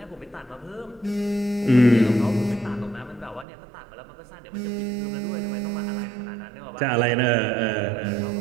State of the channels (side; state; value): left; drops out; at 3.5 s